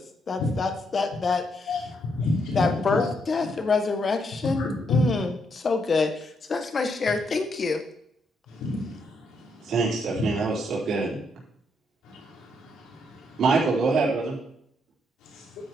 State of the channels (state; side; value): normal; both; correlation 0.76